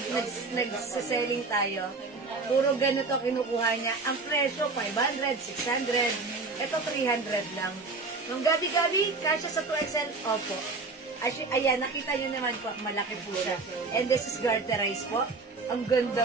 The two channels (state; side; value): quieter; left; 3.9 dB